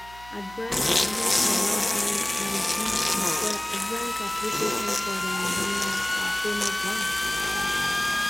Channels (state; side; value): noise; right; hum, 20 dB below the sound